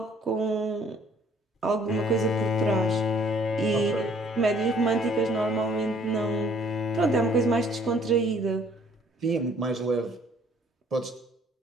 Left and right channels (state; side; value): normal; both; correlation 0.60